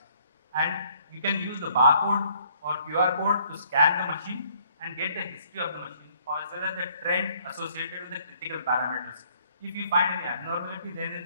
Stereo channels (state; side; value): inverted; both; correlation -0.64